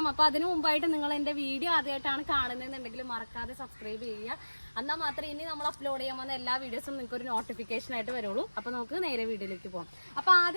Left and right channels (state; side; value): inverted; both; correlation -1.00